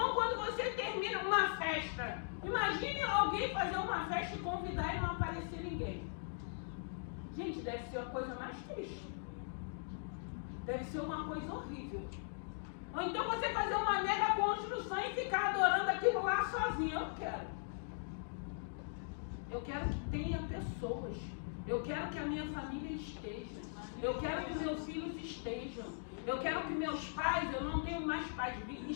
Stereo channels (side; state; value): right; silent; digital silence